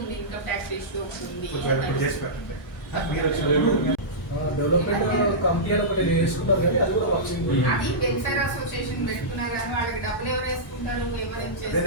ఉంది, ఇన్కమ్ ట్యాక్స్ ఇష్యూ ఉంది. డెవలప్మెంట్ కమిటీ ఒకటి వేసుకున్నారు కానీ అది కూడా వర్కింగ్. అది వెల్ఫేర్ అసోసియేషన్ పెట్టుకున్నారు కానీ వాళ్ళకి డబ్బులు ఎవరు వేసుకుంటారు, ఎవరు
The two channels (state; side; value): normal; both; correlation -0.14